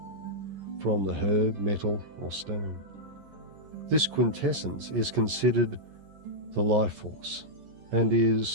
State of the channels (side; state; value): left; late; 12 ms